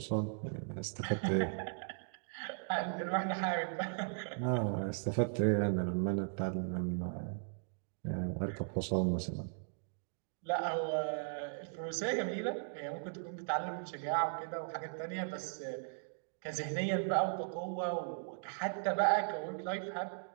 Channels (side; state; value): left; silent; digital silence